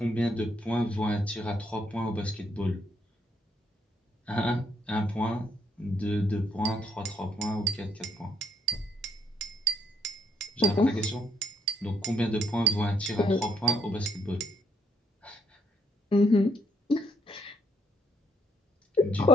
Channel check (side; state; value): both; normal; correlation 0.71